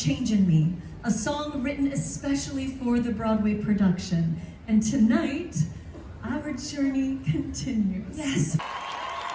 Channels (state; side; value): identical; both; correlation 1.00